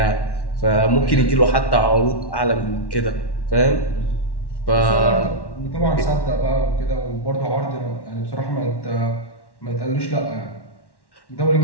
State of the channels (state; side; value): late; right; 1.1 ms